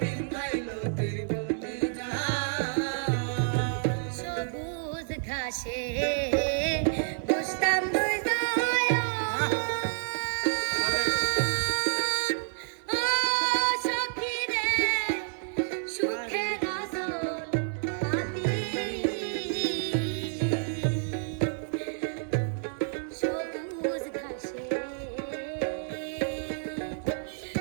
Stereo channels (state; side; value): silent; left; digital silence